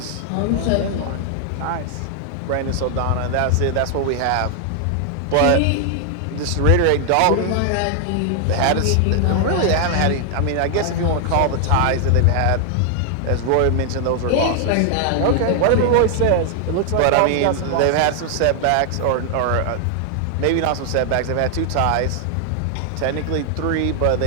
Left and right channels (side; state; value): both; different; correlation 0.00